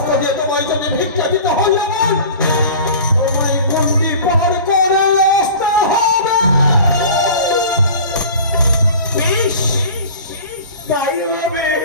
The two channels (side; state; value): both; inverted; correlation -0.39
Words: দিয়ে তোমায় যদি ভিক্ষা দিতে হলে তোমায় গণ্ডি পার করে আসতে হবে। বেশ তাই হবে।